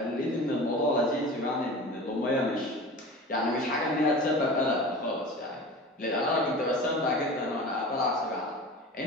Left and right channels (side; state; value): both; normal; correlation 0.35